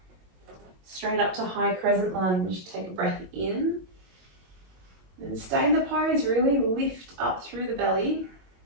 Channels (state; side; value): late; left; 22 ms